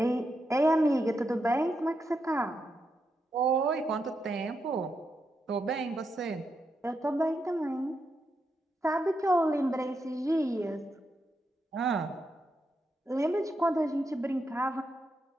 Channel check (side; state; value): both; normal; correlation 0.84